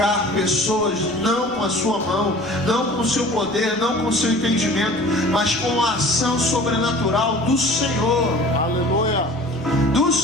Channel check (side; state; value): both; normal; correlation 0.44